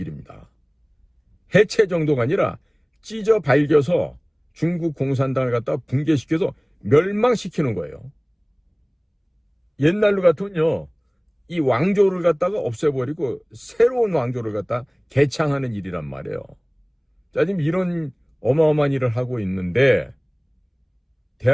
해체 정도가 아니라 찢어 발겨서 중국 공산당을 갖다 붕괴시켜서 멸망시키는 거예요. 옛날로 같으면요, 이 왕조를 갖다가 없애버리고 새로운 왕조를 갖다 개창하는 일이란 말이에요. 자, 지금 이런 어마어마한 일을 하고 있는데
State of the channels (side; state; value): both; identical; correlation 1.00